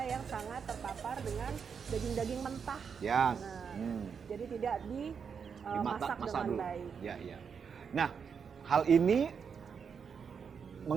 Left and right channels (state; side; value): quieter; left; 6.5 dB